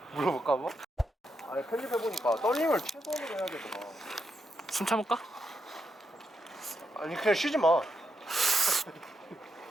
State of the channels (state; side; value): normal; both; correlation 0.83